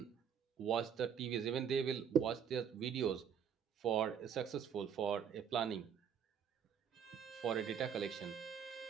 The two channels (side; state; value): left; quieter; 7.9 dB